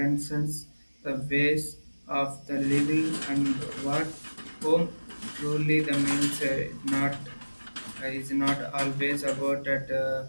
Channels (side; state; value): both; inverted; correlation -1.00